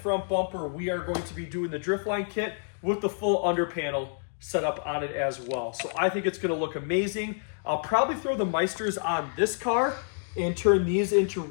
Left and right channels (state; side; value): silent; right; digital silence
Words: bumper, we are going to be doing the Driftline kit with the full under panel set up on it as well. So I think it's going to look amazing. I'll probably throw the Meisters on this car and turn these into